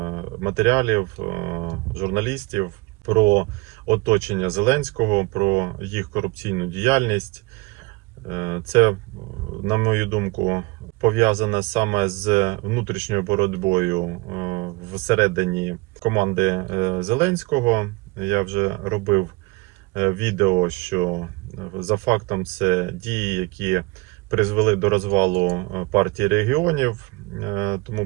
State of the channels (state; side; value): quieter; left; 23.7 dB